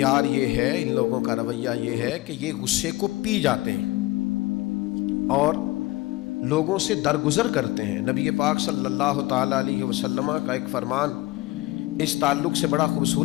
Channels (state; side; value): quieter; right; 19.2 dB